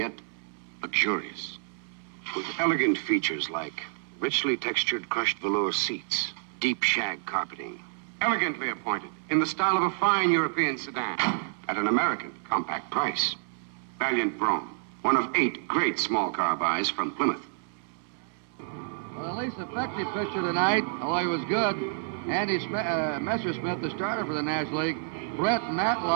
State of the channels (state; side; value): silent; left; 59 dB below the other